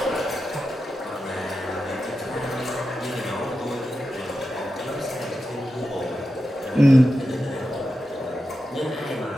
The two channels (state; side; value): normal; both; correlation 0.90